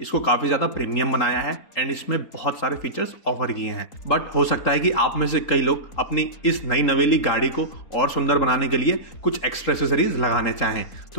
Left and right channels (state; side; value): late; right; 3.8 ms